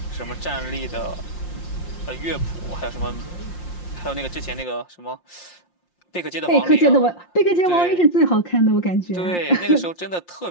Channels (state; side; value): late; right; 5.7 ms